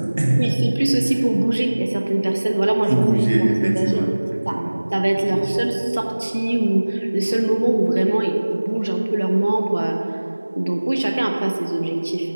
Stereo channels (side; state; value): both; inverted; correlation -1.00